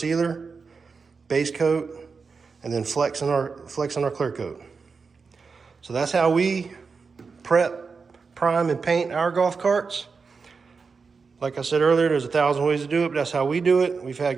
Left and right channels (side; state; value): left; quieter; 5.0 dB